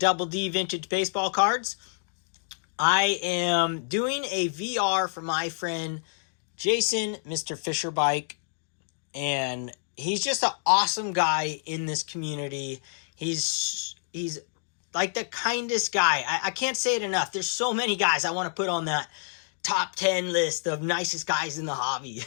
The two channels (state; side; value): silent; right; digital silence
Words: D Vintage Baseball Cards. I am doing a VR for my friend Jason, Mr. Fisher Bike, and he's just an awesome guy in this community. He's like the kindest guy. I can't say it enough. There's so many guys I want to put on that top 10 list of nicest guys in the hobby,